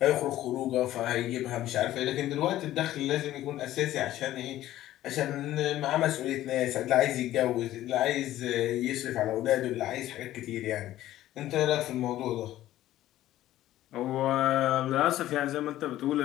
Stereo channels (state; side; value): quieter; right; 14.1 dB